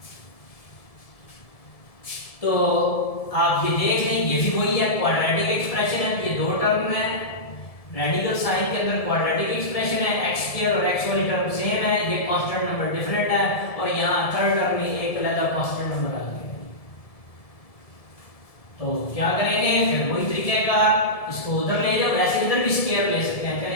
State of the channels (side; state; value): right; late; 1.7 ms